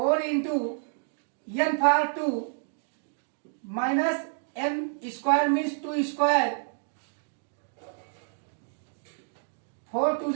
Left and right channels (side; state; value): left; silent; digital silence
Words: into n power 2 minus n square means 2 square, 4 to